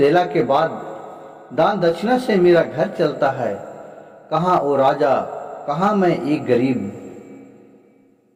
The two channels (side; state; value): both; identical; correlation 1.00